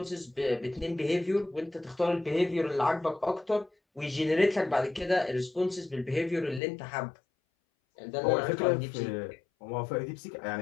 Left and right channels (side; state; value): right; drops out; at 6.6 s